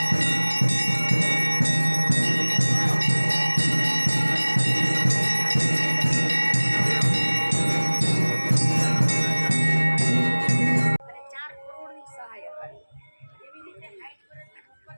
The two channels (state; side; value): inverted; both; correlation -1.00